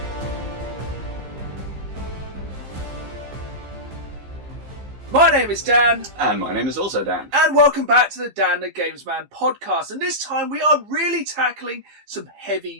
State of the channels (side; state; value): left; late; 15 ms